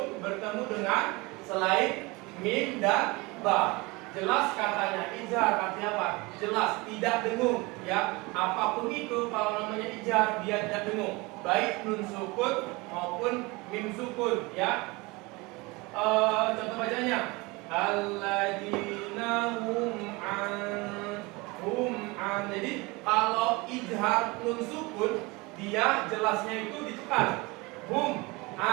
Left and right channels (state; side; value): quieter; left; 24.7 dB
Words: bertemu dengan selain mim dan ba. Jelas katanya, izhar artinya apa? Jelas, tidak dengung ya. Apapun itu kalau namanya izhar dia tidak dengung, baik nun sukun maupun mim sukun ya. Contoh bacanya, alladzina hum an. Jadi kalau izhar nun sukun dia jelasnya itu ditekan, hum